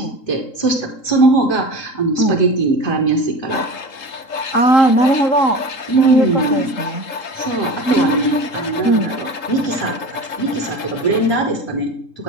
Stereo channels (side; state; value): right; late; 3.8 ms